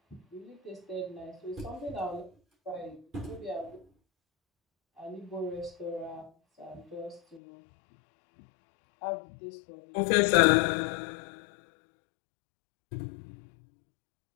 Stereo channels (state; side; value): drops out; right; at 7.4 s